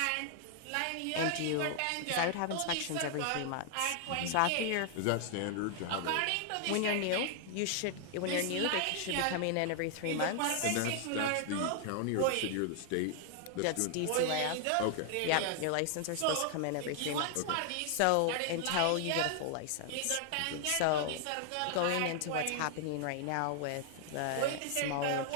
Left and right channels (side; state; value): both; different; correlation 0.00